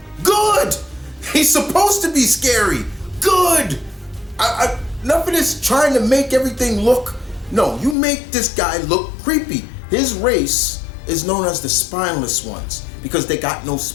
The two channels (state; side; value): drops out; right; at 8.0 s